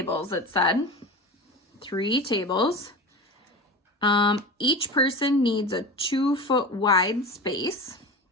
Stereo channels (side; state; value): both; normal; correlation 0.29